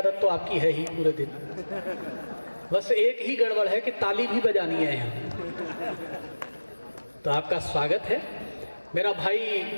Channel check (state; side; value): inverted; both; correlation -1.00